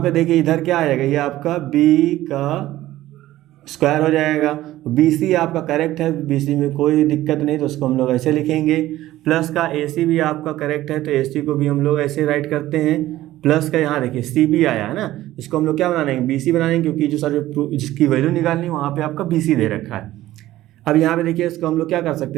देखिए इधर क्या आ जाएगा, ये आपका b का स्क्वायर हो जाएगा। BC आपका करेक्ट है, BC में कोई दिक्कत नहीं, तो उसको हम लोग ऐसे लिखेंगे। प्लस का AC भी आपका करेक्ट है, तो AC को भी हम लोग ऐसे राइट करते हैं। प्लस का यहाँ देखिए CB आया है ना, इसको हम लोग क्या बनाएंगे, BC बनाएंगे, क्योंकि जो सर जिसकी वैल्यू निकालनी है वहाँ पे आपका BC दे रखा है। अब यहाँ पे देखिए इसको हम लोग क्या कर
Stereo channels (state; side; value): quieter; left; 15.2 dB